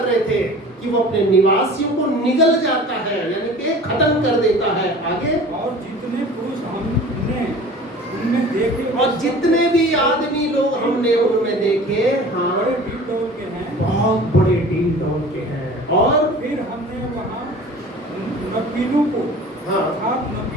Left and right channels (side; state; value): both; normal; correlation 0.42